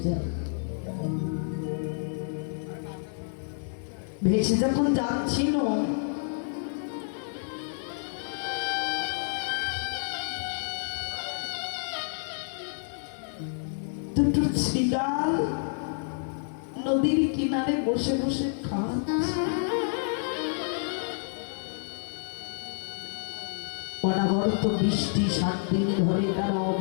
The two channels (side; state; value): right; silent; digital silence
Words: যায়। ভেসে যখন যাচ্ছিল, দুটো শৃগাল নদীর কিনারে বসে বসে খাচ্ছে। অনাবরত বৃষ্টি 7 দিন ধরে তারা